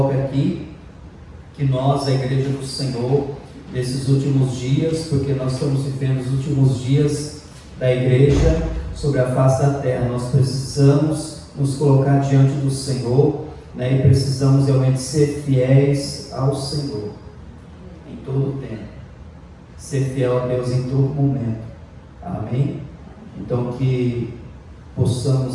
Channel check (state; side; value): identical; both; correlation 1.00